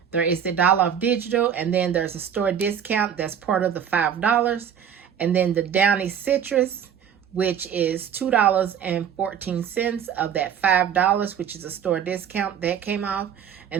There is the $1 off digital, and then there's a store discount that's part of the $5. And then the Downy Citrus, which is $2.14 of that $5, which is a store discount that came off.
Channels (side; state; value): left; quieter; 8.4 dB